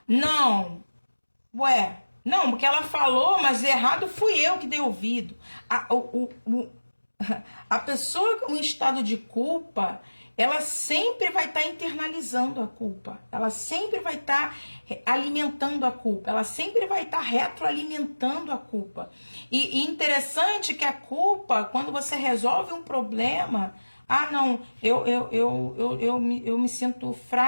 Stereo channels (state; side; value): inverted; both; correlation -1.00